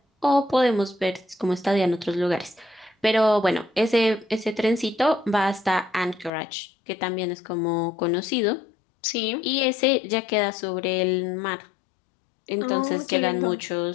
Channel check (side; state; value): right; drops out; at 6.3 s